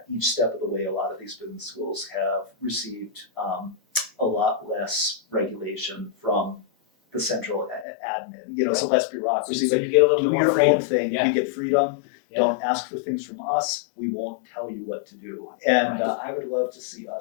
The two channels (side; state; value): right; drops out; at 7.9 s